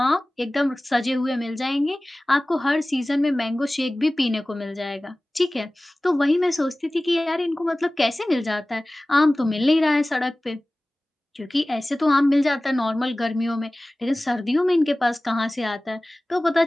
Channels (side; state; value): both; normal; correlation 0.98